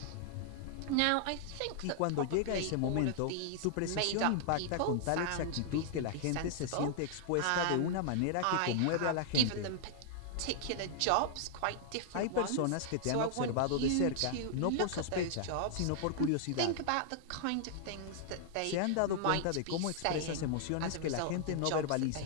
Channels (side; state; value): both; different; correlation -0.01